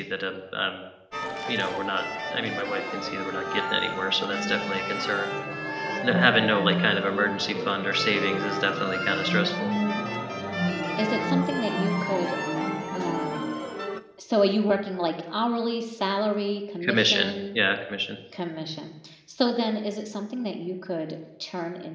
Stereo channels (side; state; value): both; identical; correlation 1.00